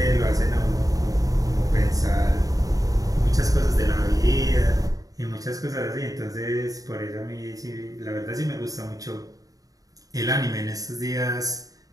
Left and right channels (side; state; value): left; late; 0.17 ms